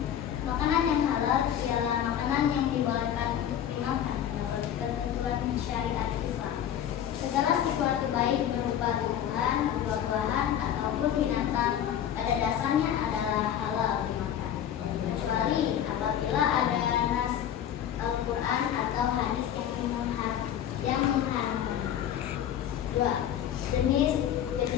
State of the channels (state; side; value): quieter; right; 10.1 dB